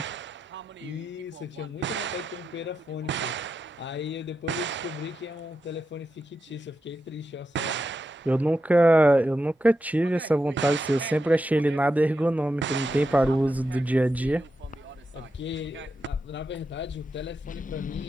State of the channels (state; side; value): normal; both; correlation 0.87